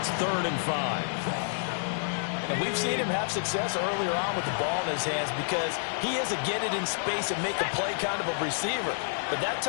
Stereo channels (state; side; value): silent; right; digital silence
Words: it's 3rd and 5. And we've seen him have success earlier on with the ball in his hands because he is a get it in space and make a play kind of a receiver. But that